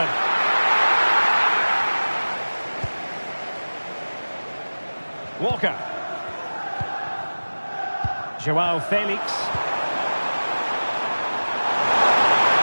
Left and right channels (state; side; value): inverted; both; correlation -1.00